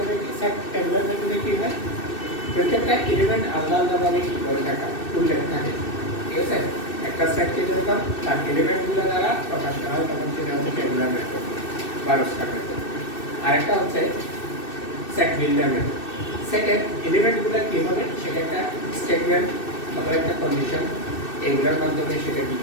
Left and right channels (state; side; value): late; right; 2.6 ms